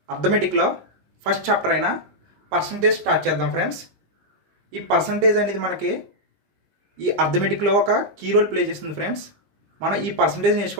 అర్థమెటిక్లో ఫస్ట్ చాప్టర్ అయిన పర్సంటేజ్ స్టార్ట్ చేద్దాం ఫ్రెండ్స్. ఈ పర్సంటేజ్ అనేది మనకి ఈ అర్థమెటిక్లో ఒక కీ రోల్ ప్లే చేస్తుంది ఫ్రెండ్స్. మనం ఈ పర్సంటేజ్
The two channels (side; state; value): left; late; 20 ms